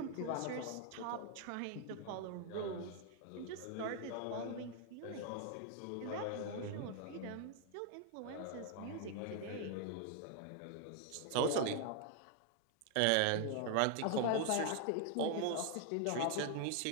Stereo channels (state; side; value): different; both; correlation 0.00